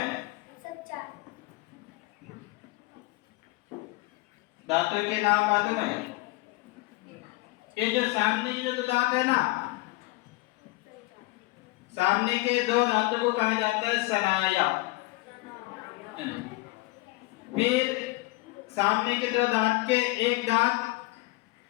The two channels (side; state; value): right; quieter; 22.1 dB